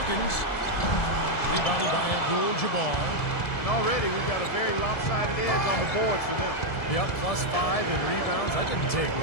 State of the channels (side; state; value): right; late; 1.7 ms